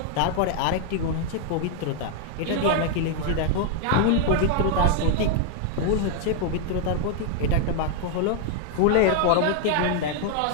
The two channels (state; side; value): different; both; correlation 0.00